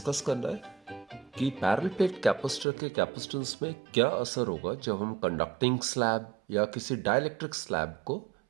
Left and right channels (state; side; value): drops out; left; at 2.7 s